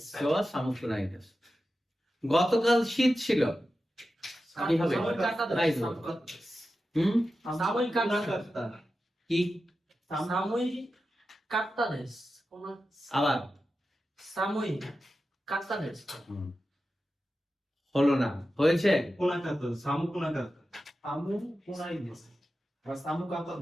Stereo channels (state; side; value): normal; both; correlation 0.92